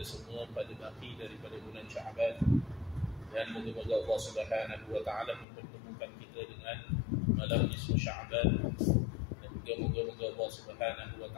semua pada baki daripada bulan Sya'ban. Dan moga-moga Allah Subhanahu wa taala mempertemukan kita dengan malam nisfu Sya'ban. Dan juga moga-moga Allah Subhanahu wa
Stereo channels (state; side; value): drops out; right; at 5.5 s